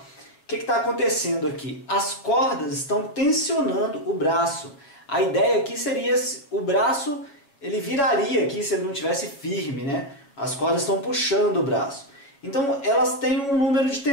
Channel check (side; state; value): right; late; 7.2 ms